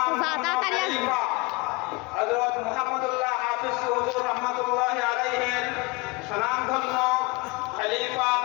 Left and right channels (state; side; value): quieter; right; 26.0 dB